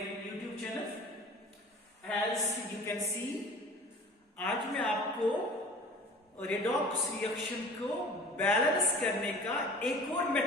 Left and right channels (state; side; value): normal; both; correlation 0.43